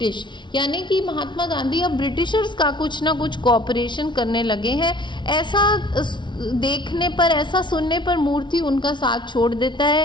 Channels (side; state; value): right; late; 0.23 ms